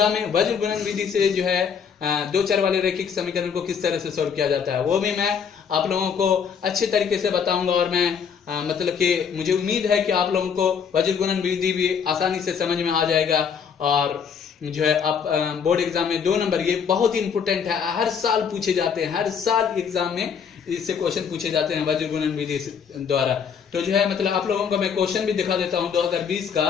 में। वज्र गुणन विधि से जो है दो चर वाले रैखिक समीकरण को किस तरह से सॉल्व किया जाता है, वो भी मैं आप लोगों को अच्छे तरीके से बताऊंगा। और मैं मतलब कि मुझे उम्मीद है कि आप लोगों को वज्र गुणन विधि भी आसानी से समझ में आ जाएगा। और जो है आप बोर्ड एग्जाम में 2 नंबर, ये बहुत ही इंपोर्टेंट है, हर साल पूछे जाते हैं, हर साल एग्जाम में इससे क्वेश्चन पूछे जाते हैं वज्र गुणन विधि द्वारा। तो जो है मतलब आप लोगों को मैं क्वेश्चन भी दिखा देता हूं 2020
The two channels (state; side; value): quieter; right; 6.9 dB